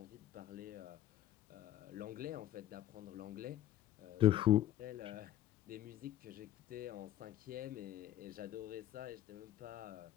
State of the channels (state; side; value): quieter; right; 12.7 dB